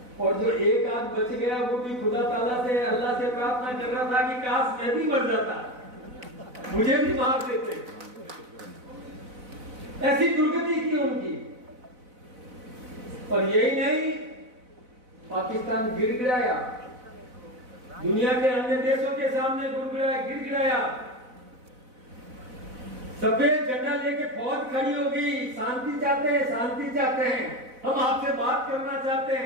और जो एक आध बच गया वो भी खुदा ताला से, अल्लाह से प्रार्थना कर रहा था कि काश मैं भी मर जाता, मुझे भी मार देते। ऐसी दुर्गति की उनकी। और यही नहीं, पाकिस्तान गिड़गिड़ाया, दुनिया के अन्य देशों के सामने गिड़गिड़ाया, सफेद झंडा लेके फौज खड़ी हो गई, शांति चाहते हैं, शांति चाहते हैं, हम आपसे बात करना चाहते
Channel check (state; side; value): late; left; 4.0 ms